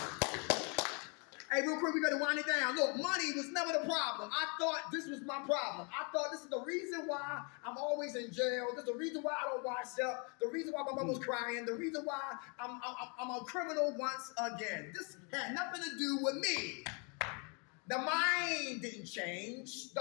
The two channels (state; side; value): quieter; right; 34.8 dB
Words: Hey, real quick, we got to wind it down. Look, money was never the problem. I thought this was my problem. I thought this is the reason why I'm always in jail. This is the reason why I don't wash up. The reason why my mom was crying. The reason why I'm a criminal once again. This had nothing to do with me. The mind didn't change. The